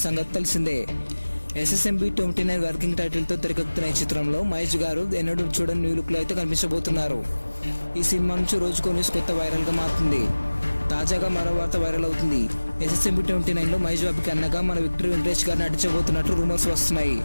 సంగతి తెలిసిందే. SSMB 29 వర్కింగ్ టైటిల్తో తెరకెక్కుతున్న ఈ చిత్రంలో మహేష్ గారు ఎన్నడూ చూడని న్యూ లుక్లో అయితే కనిపించబోతున్నారు. ఈ సినిమా నుంచి రోజుకో న్యూస్ కొత్త వైరల్గా మారుతుంది. తాజాగా మరో వార్త వైరల్ అవుతుంది. SSMB 29లో మహేష్ బాబుకి అన్నగా మన విక్టరీ వెంకటేష్ గారు నటించబోతున్నట్టు రూమర్స్ వస్తున్నాయి.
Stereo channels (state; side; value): inverted; both; correlation -1.00